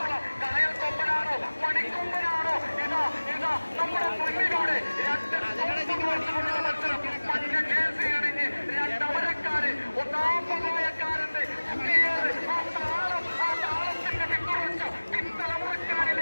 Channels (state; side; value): inverted; both; correlation -1.00